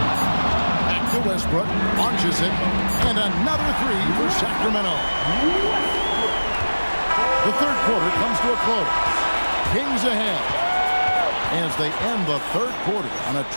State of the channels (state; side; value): inverted; both; correlation -1.00